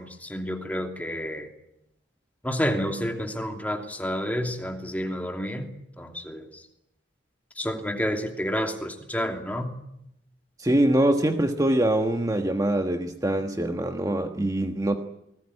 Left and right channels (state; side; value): normal; both; correlation 0.81